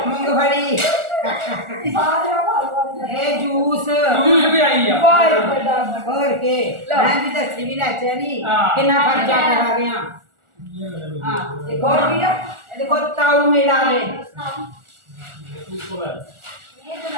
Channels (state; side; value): late; left; 1.4 ms